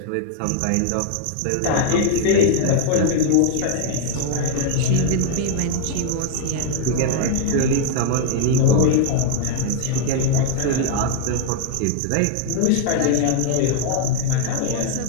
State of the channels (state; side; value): different; both; correlation 0.00